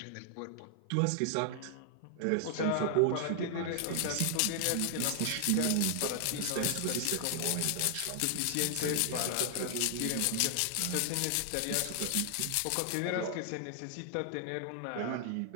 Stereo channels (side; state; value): both; different; correlation 0.00